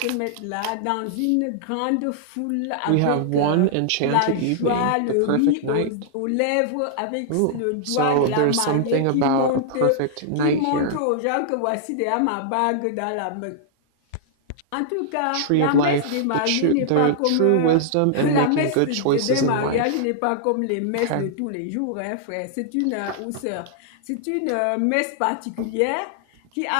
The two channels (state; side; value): different; both; correlation -0.01